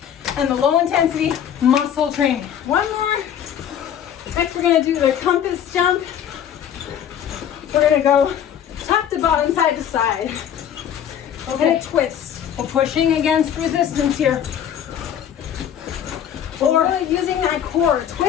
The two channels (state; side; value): quieter; right; 9.4 dB